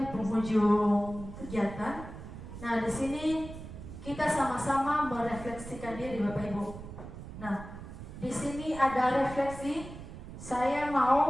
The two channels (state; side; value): noise; right; rumble, 12 dB below the sound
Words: penghujung kegiatan. Nah, di sini kita sama-sama merefleksikan diri Bapak Ibu. Nah, di sini ada refleksi. Saya